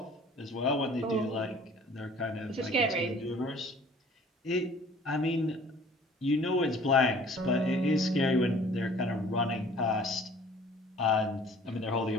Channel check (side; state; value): both; normal; correlation 0.52